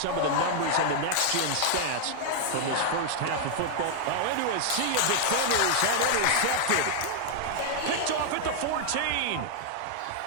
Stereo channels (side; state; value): both; different; correlation 0.00